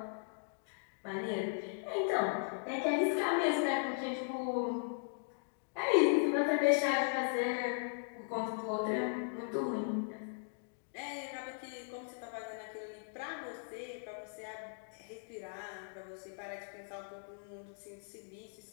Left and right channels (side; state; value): right; silent; digital silence